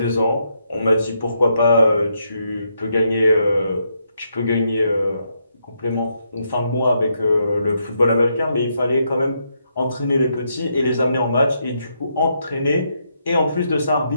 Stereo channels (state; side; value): inverted; both; correlation -0.79